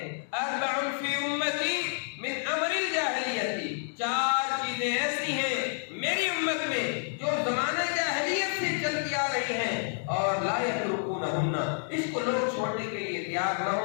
اربع فی امتی من امر الجاہلیت، 4 چیزیں ایسی ہیں میری امت میں جو زمانہ جاہلیت سے چلتی آ رہی ہیں اور لا یترکونہن، اس کو لوگ چھوڑنے کے لیے تیار نہ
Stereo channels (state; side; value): silent; right; digital silence